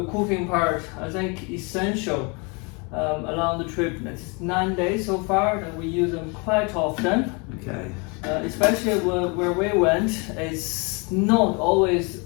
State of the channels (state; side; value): quieter; right; 31.3 dB